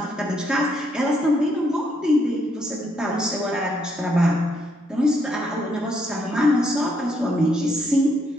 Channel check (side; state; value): both; normal; correlation 0.74